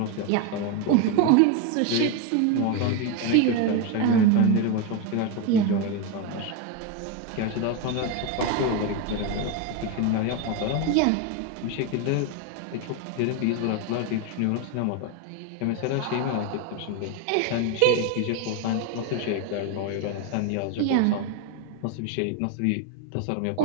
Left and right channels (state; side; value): different; both; correlation 0.02